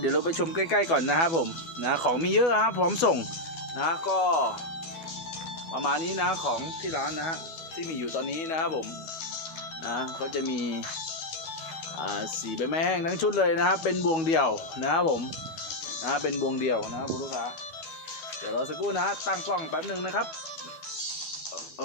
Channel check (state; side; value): late; right; 12 ms